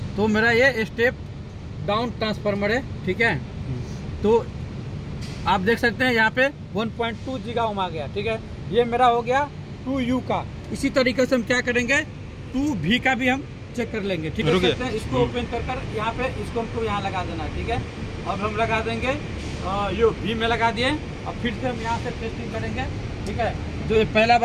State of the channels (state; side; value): identical; both; correlation 1.00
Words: तो मेरा ये स्टेप डाउन ट्रांसफार्मर है, ठीक है। तो आप देख सकते हैं यहाँ पे 1.2 जीगा ओम आ गया, ठीक है। ये मेरा हो गया 2U का। इसी तरीके से हम क्या करेंगे, 2V का भी हम चेक कर लेंगे, ठीक है। इसको ओपन कर यहाँ पे इसको हमको यहाँ लगा देना है, ठीक है। अब हम लगा देंगे यो V में लगा दिए। अब फिर से हम यहाँ से टेस्टिंग करेंगे, ठीक है। जो पहला